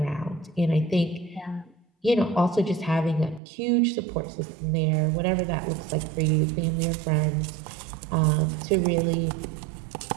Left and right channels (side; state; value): left; drops out; at 3.4 s